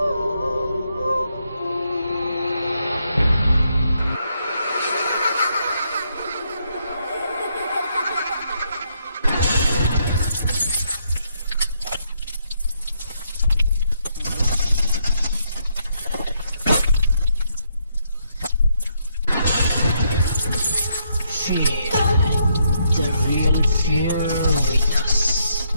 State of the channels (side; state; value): both; inverted; correlation -0.76